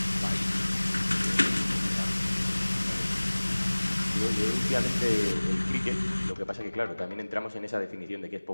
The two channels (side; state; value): both; inverted; correlation -1.00